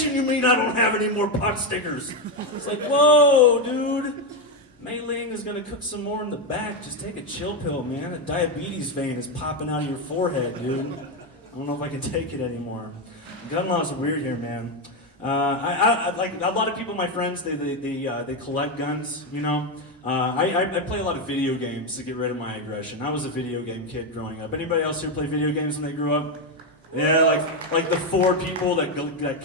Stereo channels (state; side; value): normal; both; correlation 0.07